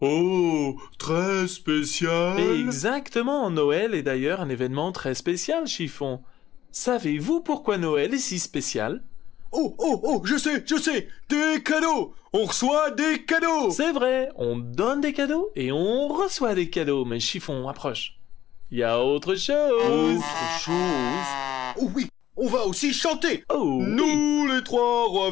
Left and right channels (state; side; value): quieter; right; 12.4 dB